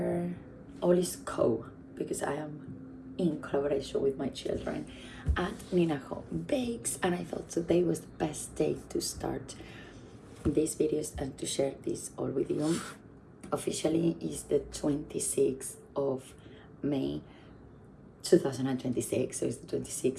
all is co because I am in collaboration with my children at Ninaho Bakes, and I thought today was the best day to start these videos and to share this all with you. Officially is the 26th of May 2026, so it's the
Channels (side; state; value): both; identical; correlation 1.00